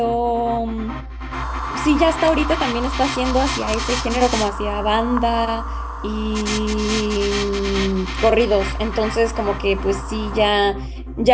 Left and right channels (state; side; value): identical; both; correlation 1.00